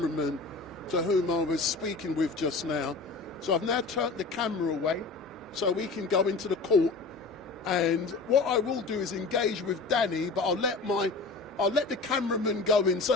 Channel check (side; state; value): right; quieter; 3.9 dB